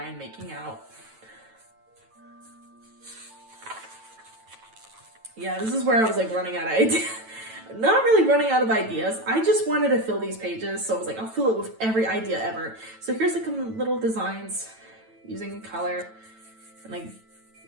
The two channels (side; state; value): left; late; 9.0 ms